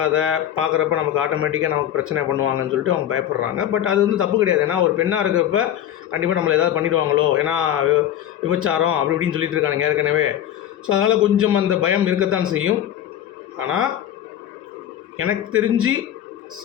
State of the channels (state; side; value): quieter; right; 11.0 dB